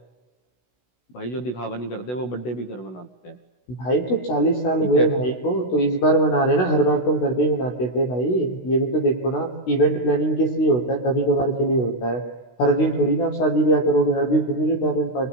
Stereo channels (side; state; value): right; late; 16 ms